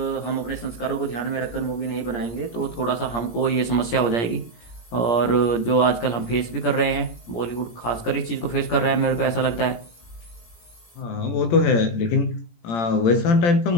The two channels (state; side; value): late; right; 17 ms